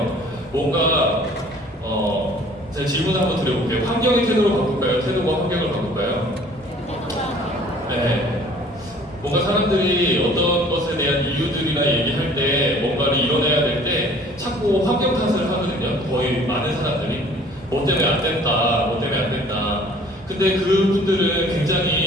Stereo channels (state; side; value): normal; both; correlation 0.52